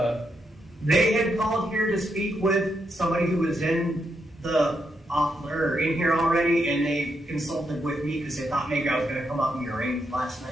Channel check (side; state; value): both; normal; correlation 0.81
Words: They had called here to speak with somebody who was in in here already, and they consulted with me because they thought maybe I was going to come up and be arraigned last